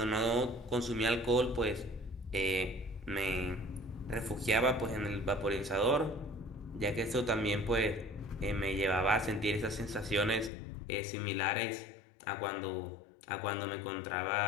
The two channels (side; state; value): right; drops out; at 10.5 s